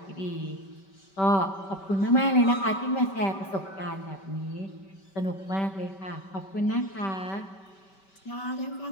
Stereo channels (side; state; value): right; late; 5.2 ms